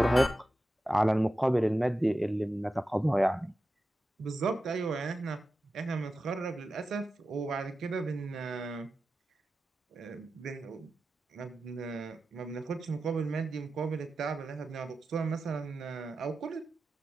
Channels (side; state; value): both; normal; correlation 0.92